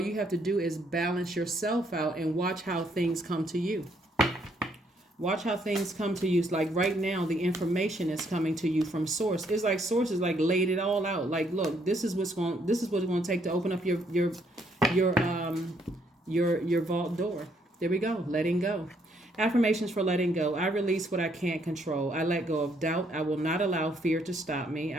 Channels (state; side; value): normal; both; correlation 0.70